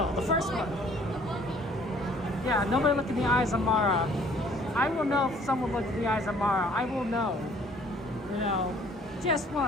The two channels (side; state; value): both; normal; correlation 0.57